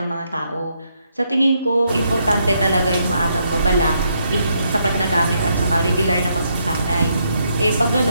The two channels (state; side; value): inverted; both; correlation -0.77